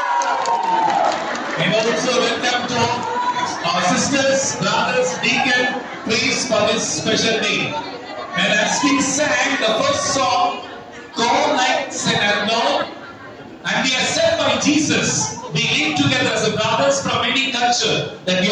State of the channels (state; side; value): identical; both; correlation 1.00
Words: And also welcome to our sisters, brothers, deacon, priests for this special day. And as we sang the first song, Go Like St. Arnold, and we are sent by Jesus. We live together as brothers from any culture that we